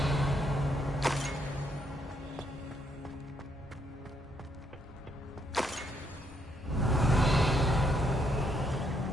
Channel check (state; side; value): normal; both; correlation 0.74